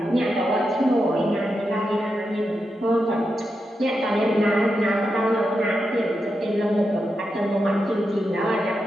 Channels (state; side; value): normal; both; correlation 0.87